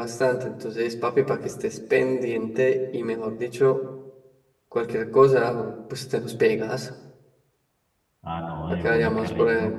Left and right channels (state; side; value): identical; both; correlation 1.00